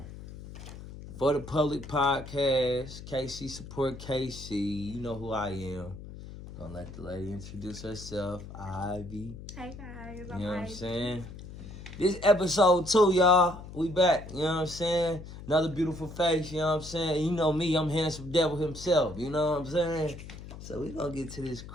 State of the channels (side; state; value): left; noise; hum, 13 dB below the sound